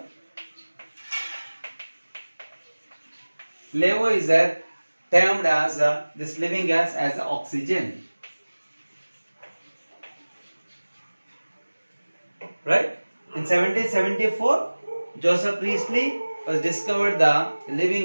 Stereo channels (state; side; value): inverted; both; correlation -1.00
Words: Lavoisier termed as this living gas as oxygen. Right? In 1774, Joseph Priestley was discovered the living